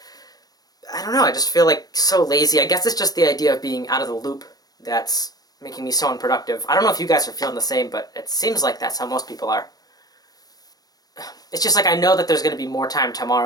I don't know, I just feel like so lazy. I guess it's just the idea of being out of the loop that's making me so unproductive. I don't know if you guys are feeling the same, but it seems like that's how most people are. It's just like I know that there's going to be more time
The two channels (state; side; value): late; right; 0.19 ms